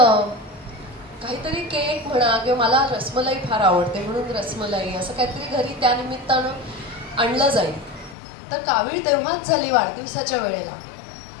काहीतरी केक म्हणा किंवा मला रसमलाई फार आवडते म्हणून रसमलाई असं काहीतरी घरी त्या निमित्तानं आणलं जाईल. तर कावीळ तेव्हाच झाली वाढदिवसाच्या वेळेला.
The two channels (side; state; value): right; drops out; at 8.2 s